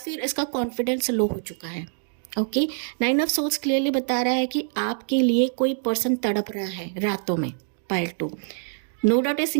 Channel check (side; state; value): left; silent; digital silence